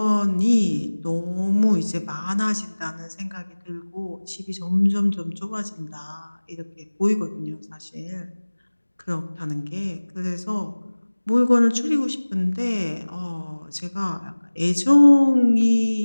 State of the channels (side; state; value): both; inverted; correlation -1.00